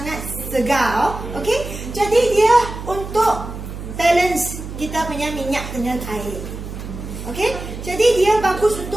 segar. Okey? Jadi dia untuk balance kita punya minyak dengan air. Okey? Jadi dia bagus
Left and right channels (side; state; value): right; noise; hum, 9 dB below the sound